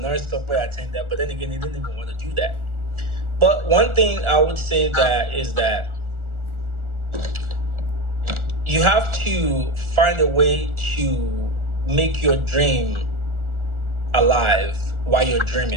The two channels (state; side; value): late; left; 1.4 ms